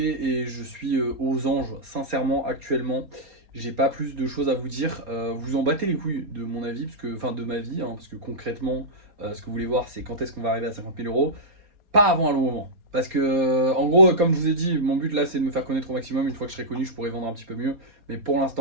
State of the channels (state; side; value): late; left; 4.2 ms